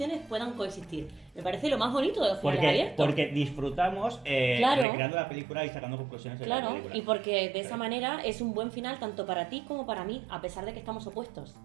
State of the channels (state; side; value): drops out; left; at 4.9 s